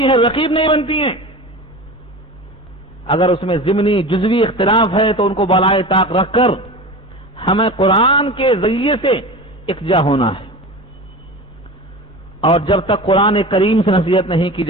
ہیں, رقیب نہیں بنتی ہیں. اگر اس میں ضمنی جزوی اختلاف ہے تو ان کو بالائے طاق رکھ کر ہمیں قرآن کے ذریعے سے اکجا ہونا ہے. اور جب تک قرآن کریم سے نصیحت نہیں کی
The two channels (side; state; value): both; normal; correlation 0.32